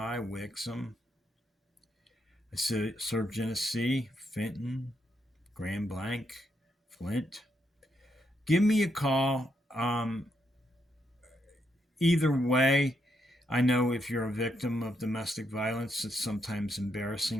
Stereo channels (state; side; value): normal; both; correlation 0.79